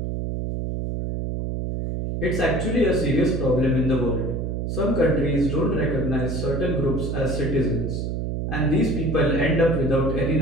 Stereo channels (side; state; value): right; noise; hum, 2 dB below the sound